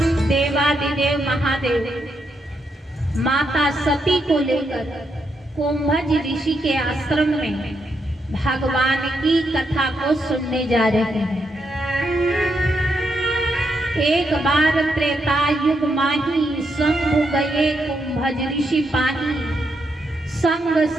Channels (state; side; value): normal; both; correlation 0.80